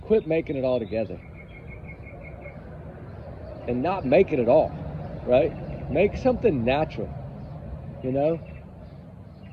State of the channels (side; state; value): both; identical; correlation 1.00